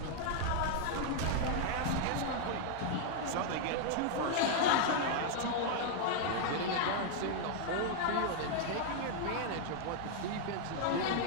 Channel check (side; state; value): both; different; correlation 0.00